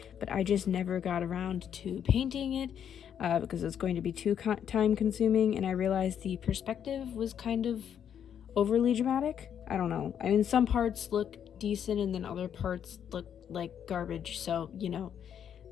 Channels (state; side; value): quieter; right; 8.8 dB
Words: but I just never got around to painting it because it's going to be too time consuming, and I realized the perspective was kind of overly dramatic. I don't know. I mean, some parts look decent and then other parts look like garbage, so, you know,